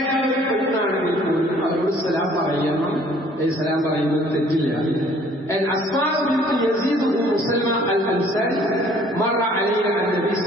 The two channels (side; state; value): both; normal; correlation 0.57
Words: ഒരു പെണ്ണാണെങ്കിൽ പോലും അവരോട് സലാം പറയണം. സലാം പറയുന്നത് തെറ്റില്ല. أسماء بنت يزيد بن سلمى الأنصاري مر علينا النبي